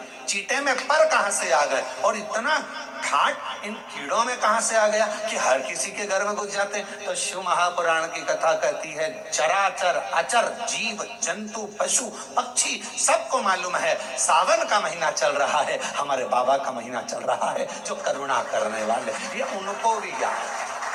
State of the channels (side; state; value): both; identical; correlation 1.00